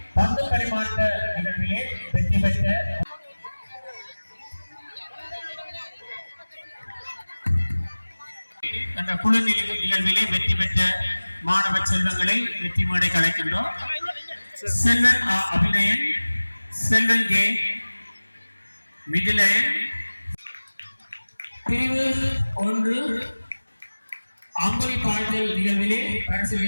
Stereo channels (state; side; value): inverted; both; correlation -1.00